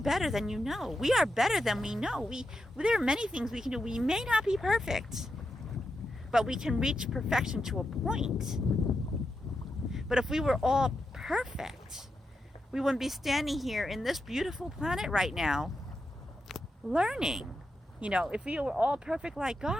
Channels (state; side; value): normal; both; correlation 0.87